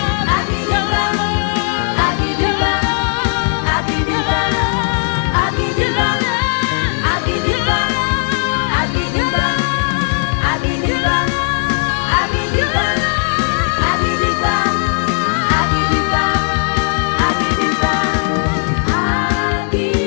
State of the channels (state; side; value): silent; right; 59 dB below the other